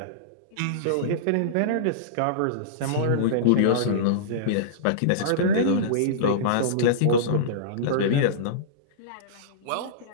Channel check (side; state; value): both; different; correlation -0.04